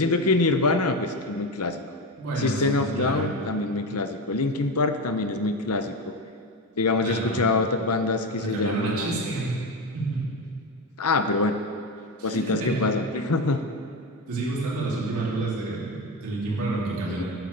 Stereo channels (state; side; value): normal; both; correlation 0.19